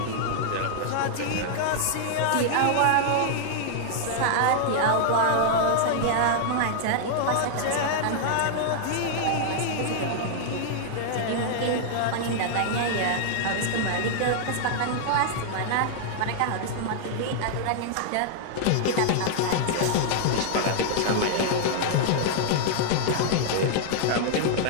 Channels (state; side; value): different; both; correlation -0.01